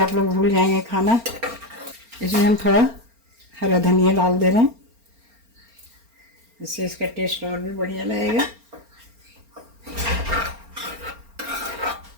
लोग भूल जाएंगे खाना। इसमें हम थोड़ा हरा धनिया डाल दे रहे हैं, इससे इसका टेस्ट और भी बढ़िया लगेगा।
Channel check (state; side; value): late; left; 4.3 ms